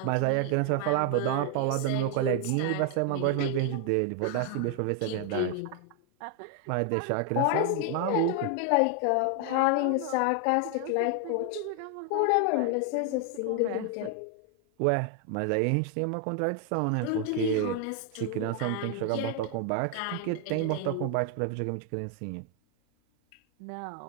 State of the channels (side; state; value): both; different; correlation 0.00